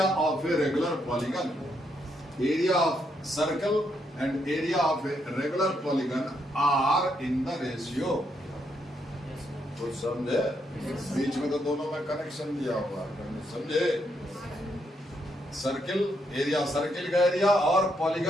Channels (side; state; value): both; normal; correlation 0.77